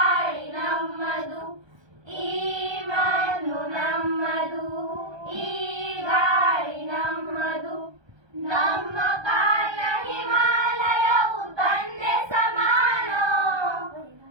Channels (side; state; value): left; late; 1.3 ms